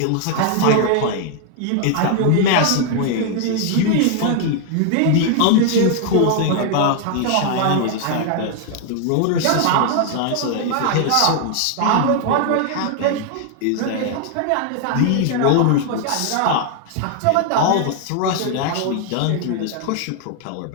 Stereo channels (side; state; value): both; different; correlation 0.00